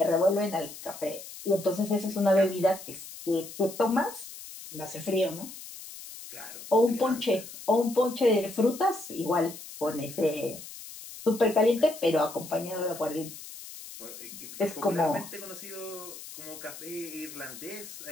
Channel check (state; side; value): noise; left; hiss, 13 dB below the sound